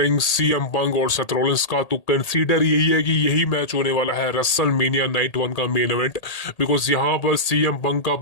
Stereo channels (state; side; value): late; right; 1.8 ms